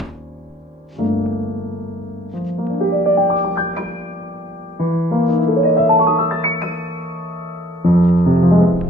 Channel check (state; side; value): normal; both; correlation 0.58